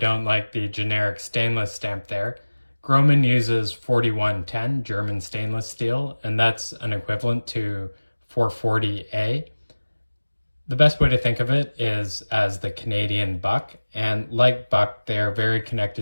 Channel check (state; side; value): inverted; both; correlation -1.00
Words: like the generic stainless stamp there. Grohmann uses 4110 German stainless steel, and that's an equivalent to 440A. The best way to think of it is as the Canadian buck, and like buck, they're very